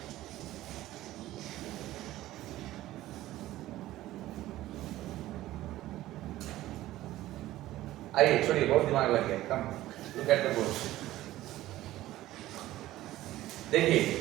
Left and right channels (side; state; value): left; quieter; 15.4 dB